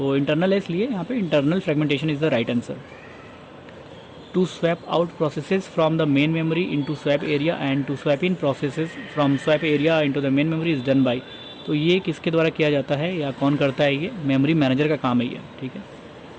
इंटरनल है इसलिए यहाँ पे internal fragmentation is the right answer. To swap out processes from the main memory into swap area and to swap in processes from swap area into the main memory is done by. तो ये किसके द्वारा किया जाता है या कौन करता है, ये मेमोरी मैनेजर का काम है ये, ठीक है।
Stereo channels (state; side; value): identical; both; correlation 1.00